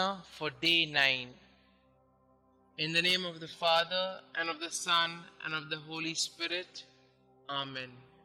for day 9. In the name of the Father, and of the Son, and of the Holy Spirit. Amen.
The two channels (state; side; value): identical; both; correlation 1.00